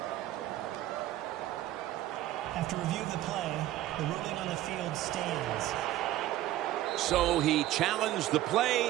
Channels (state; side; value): quieter; left; 14.4 dB